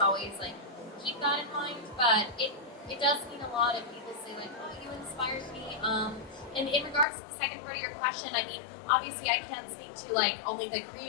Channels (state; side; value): drops out; right; at 7.1 s